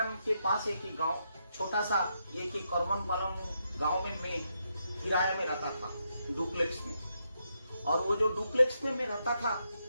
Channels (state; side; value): inverted; both; correlation -0.81